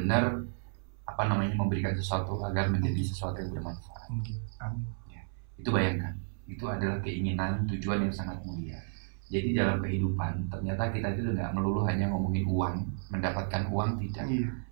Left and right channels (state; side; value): silent; left; 56 dB below the other